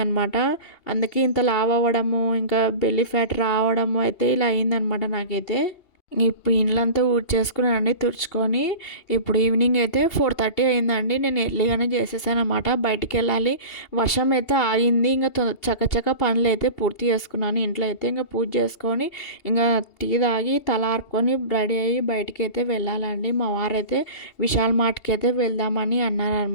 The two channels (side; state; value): right; late; 2.8 ms